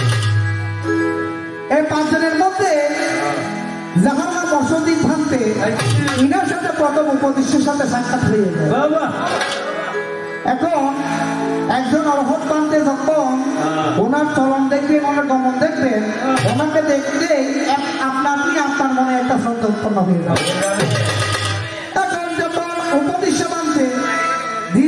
এই 5 জনের মধ্যে যাহার নাম মৎস্যজিৎ ভান্তে, ইনার সাথে প্রথম উপদেশের সাথে সাক্ষাৎ হয়ে যায়। এখন একজন অরহৎ পান্তে যখন ওনার চলন দেখবেন, ওনার গমন দেখবেন, ওনাকে দেখতে আপনার মনে একটা শ্রদ্ধা উৎপন্ন হয়ে যাবে। এখন যখন উপদেশ মানতে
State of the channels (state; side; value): identical; both; correlation 1.00